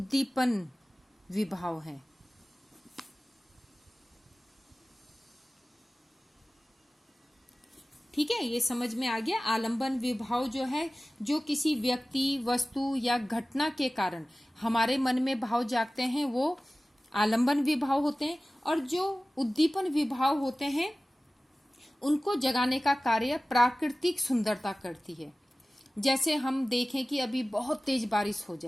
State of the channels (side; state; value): both; normal; correlation 0.97